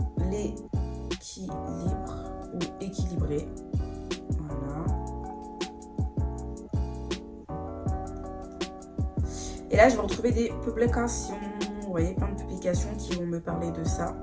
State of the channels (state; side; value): identical; both; correlation 1.00